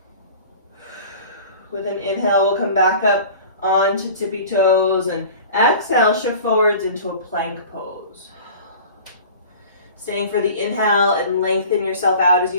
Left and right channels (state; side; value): inverted; both; correlation -0.41